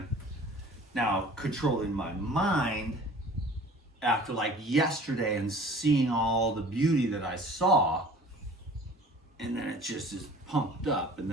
Now, controlling my mind after like yesterday and seeing all the beauty that I saw, and then it just is pumped up, and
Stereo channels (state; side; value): normal; both; correlation 0.46